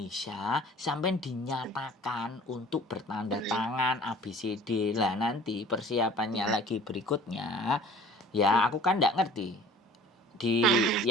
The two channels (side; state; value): both; normal; correlation 0.47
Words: sampai dinyatakan untuk bertanda tangan ABCD lah, nanti persiapannya lagi berikutnya. Ya aku kan nggak ngerti. Di